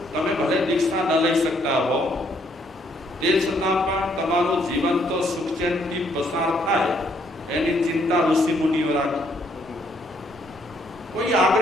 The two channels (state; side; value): normal; both; correlation 0.69